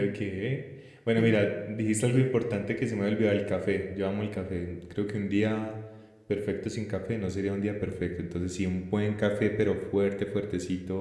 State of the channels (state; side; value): identical; both; correlation 1.00